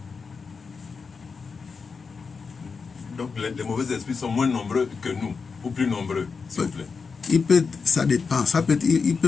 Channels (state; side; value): quieter; right; 5.1 dB